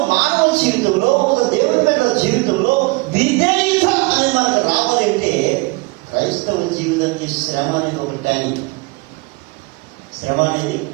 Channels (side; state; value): left; quieter; 25.3 dB